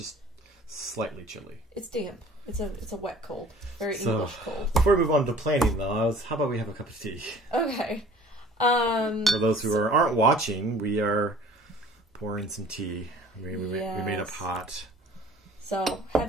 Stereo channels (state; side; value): normal; both; correlation 0.49